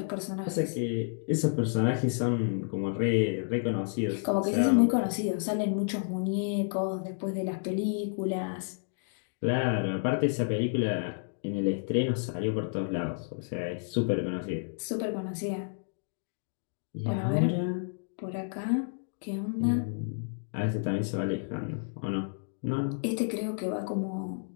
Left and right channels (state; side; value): silent; right; digital silence